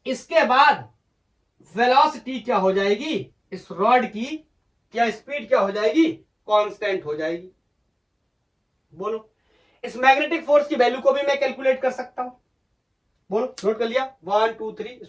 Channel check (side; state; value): both; identical; correlation 1.00